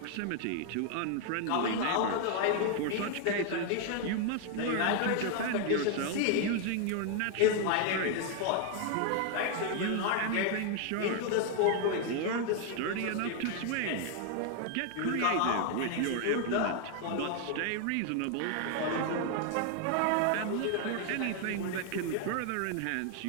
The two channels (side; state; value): both; different; correlation 0.00